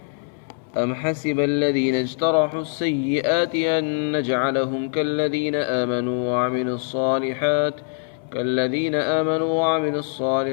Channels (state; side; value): silent; right; 63 dB below the other